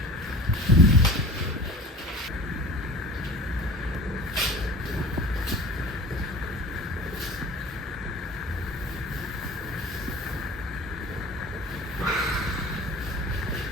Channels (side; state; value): both; normal; correlation 0.41